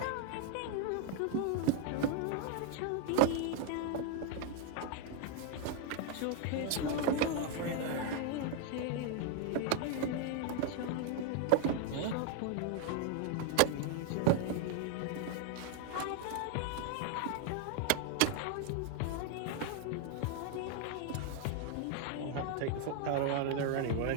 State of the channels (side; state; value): both; different; correlation 0.00